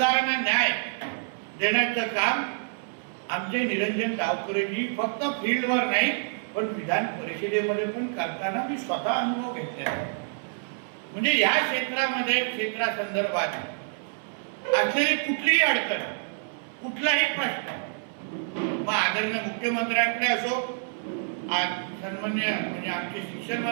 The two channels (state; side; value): silent; left; 60 dB below the other